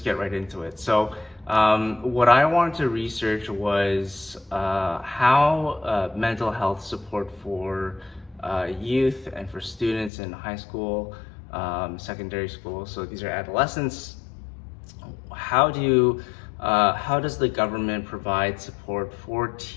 get right into it. What I wanted to research was how mental health support for youth and for students in high school, secondary school, so these are adolescents. How does the government provide support for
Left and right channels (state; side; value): drops out; right; at 10.1 s